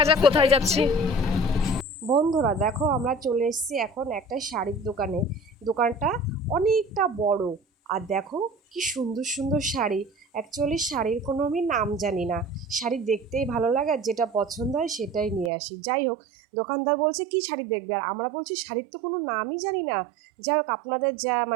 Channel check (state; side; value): drops out; left; at 15.5 s